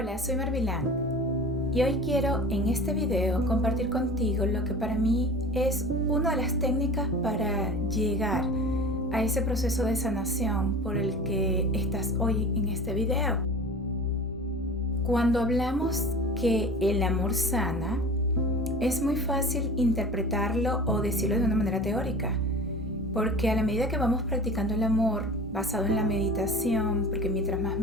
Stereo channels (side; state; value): both; normal; correlation 0.38